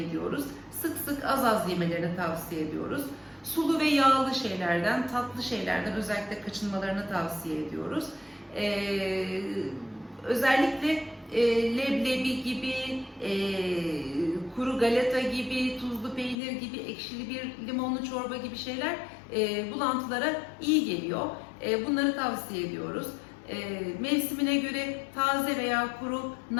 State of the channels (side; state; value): right; drops out; at 16.4 s